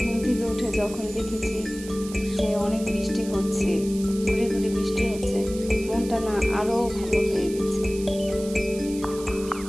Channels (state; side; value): noise; right; hiss, 15 dB below the sound